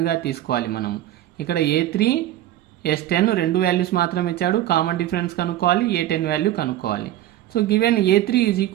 తీసుకోవాలి మనము. ఇక్కడ A3 S10 రెండు వాల్యూస్ మాత్రం ఇచ్చాడు, కామన్ డిఫరెన్స్ కనుక్కోవాలి, A10 వాల్యూ కనుక్కోవాలి. So given A3 is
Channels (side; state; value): left; quieter; 13.5 dB